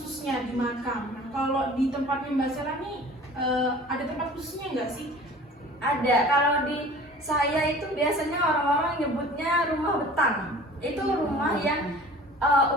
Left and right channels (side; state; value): both; normal; correlation 0.45